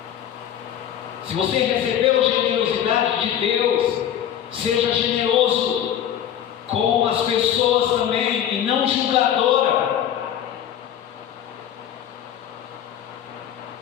se você recebeu a generosidade de Deus, seja generoso com as pessoas também, e não julgadora.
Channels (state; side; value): quieter; right; 10.2 dB